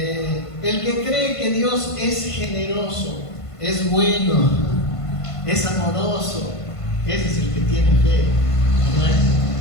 que cree que Dios es generoso, es bueno, es amoroso, ese es el que tiene fe.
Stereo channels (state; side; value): late; right; 1.5 ms